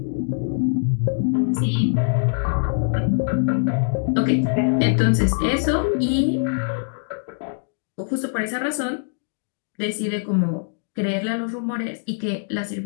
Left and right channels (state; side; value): silent; right; digital silence